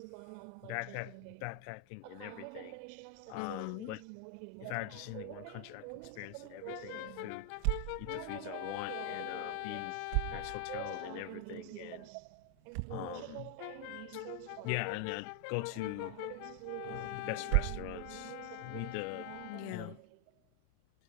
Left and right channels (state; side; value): different; both; correlation 0.00